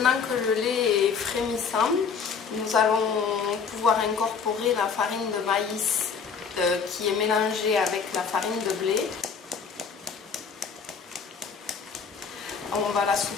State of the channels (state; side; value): quieter; right; 6.0 dB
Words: que le lait est frémissant, nous allons pouvoir incorporer la farine de maïs qui est mélangée avec la farine de blé. On va la